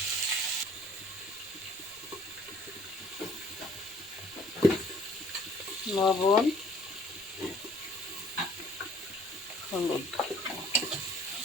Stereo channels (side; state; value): left; noise; rumble, 28 dB below the sound